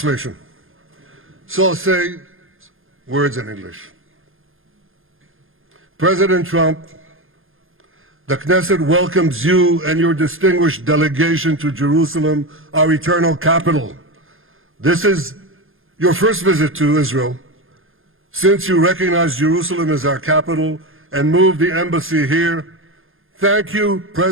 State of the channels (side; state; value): left; late; 0.60 ms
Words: So I'll say words in English. President Trump, the Knesset welcomes you and your distinguished delegation to Jerusalem, our eternal capital. This is your first visit to Israel since you recognize Jerusalem as our capital and moved the embassy here. Thank you,